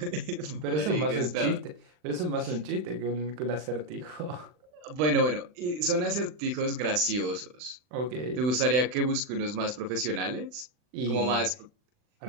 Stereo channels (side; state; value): left; late; 39 ms